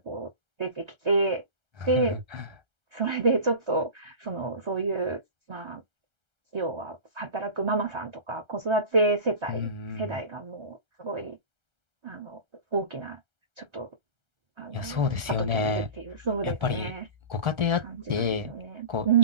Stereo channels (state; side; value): late; left; 1.3 ms